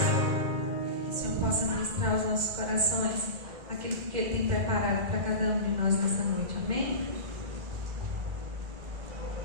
Que o Senhor possa ministrar aos nossos corações aquilo que Ele tem preparado para cada um de nós nessa noite. Amém?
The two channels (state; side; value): late; left; 2.1 ms